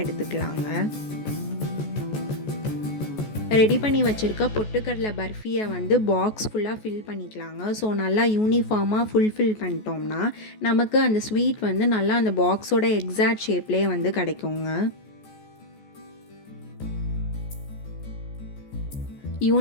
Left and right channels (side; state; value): right; late; 14 ms